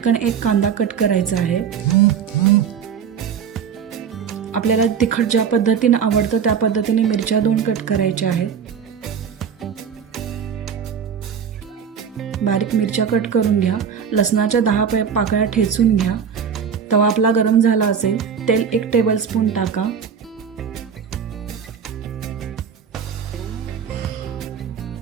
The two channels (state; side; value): quieter; left; 7.3 dB